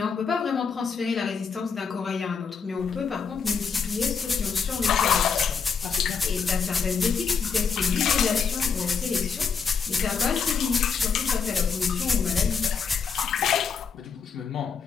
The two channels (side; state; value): right; quieter; 5.9 dB